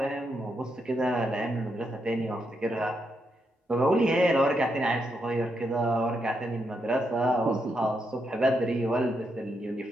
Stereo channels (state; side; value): normal; both; correlation 0.81